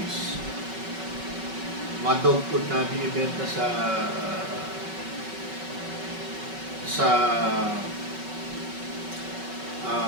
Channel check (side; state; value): left; late; 5.2 ms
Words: Mga dog food na binibenta sa